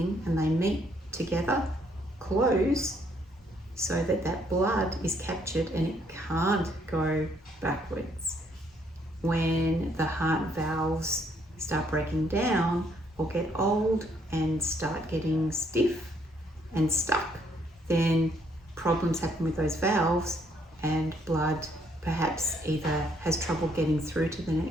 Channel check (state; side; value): normal; both; correlation 0.69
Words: and they meet together, close, so that that blood is captured and it can't go backwards. When the heart valves start breaking down or get old and start getting stiff and stuck, then problems happen with those valves, and blood perhaps either has trouble getting through to the